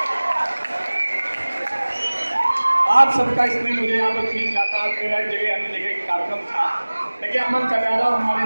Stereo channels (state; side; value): inverted; both; correlation -1.00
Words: आप सबका इसमें मुझे यहाँ पर फील जाता है, मेरा जगह अन्य जगह कार्यक्रम था, लेकिन अमन कटारा हमारे